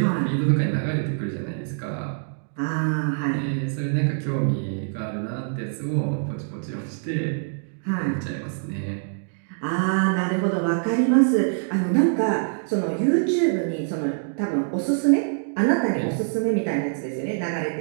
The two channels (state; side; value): silent; left; digital silence